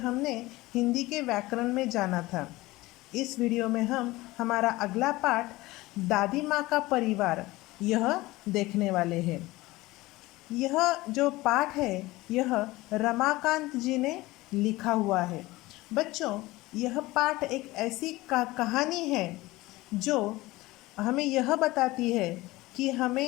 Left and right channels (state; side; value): quieter; right; 19.5 dB